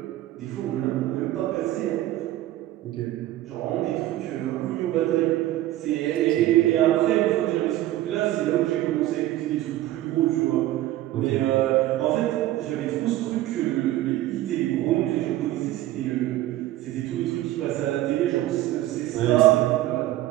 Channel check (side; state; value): left; quieter; 15.0 dB